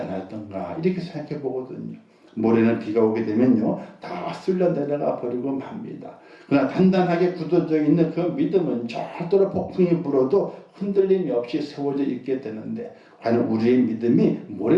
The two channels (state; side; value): identical; both; correlation 1.00